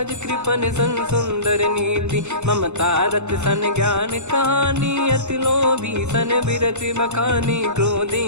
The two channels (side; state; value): left; late; 0.83 ms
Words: कृपन सन सुंदर नीति, ममता रत सन ज्ञान कहानी, अति लोभी सन बिरति बखानी, क्रोधी